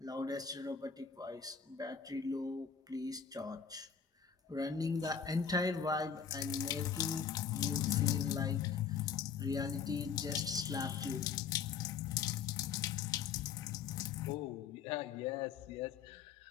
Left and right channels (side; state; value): right; quieter; 6.8 dB